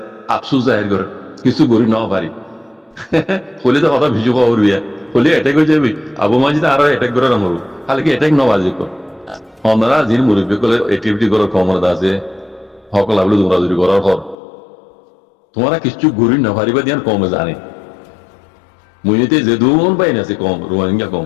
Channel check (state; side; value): drops out; right; at 14.4 s